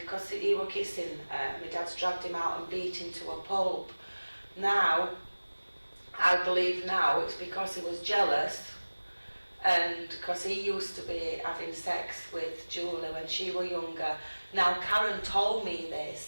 he were kissing, my dad's dragged him out and beat him to a pulp. Now, I believe now it's because he was jealous, and because he used to be having sex with Julie when she was younger. Now, Karen told me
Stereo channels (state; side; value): inverted; both; correlation -1.00